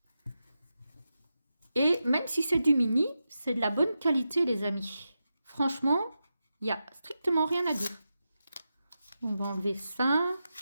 Et même si c'est du mini, c'est de la bonne qualité, les amis. Franchement, il n'y a strictement rien à dire. On va enlever ça.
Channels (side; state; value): both; inverted; correlation -0.89